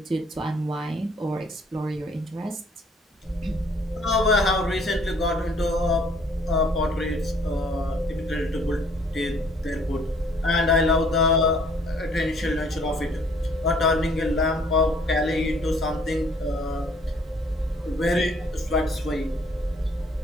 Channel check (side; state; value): both; normal; correlation 0.60